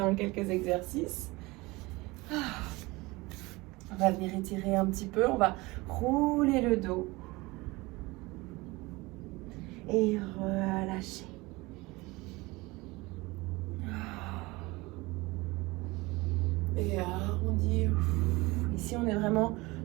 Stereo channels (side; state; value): left; quieter; 22.6 dB